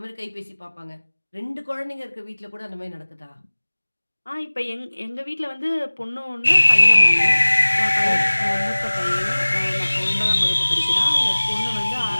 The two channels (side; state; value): both; inverted; correlation -1.00